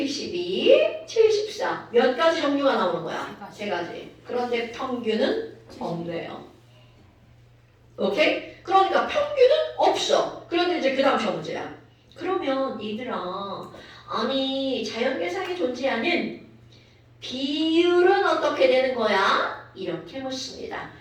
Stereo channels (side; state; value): both; identical; correlation 1.00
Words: 74 몇 가지 종류가 나오는 거야? 세 가지. 그런데 평균은 없네요. 오케이? 그러니까 평균은 없어. 그런데 이제 그 다음 시험 문제야. 그러면 얘들아 아니 자연계상에 존재하는 비율은 어떻게 되는 거야? 이렇게 묻습니다.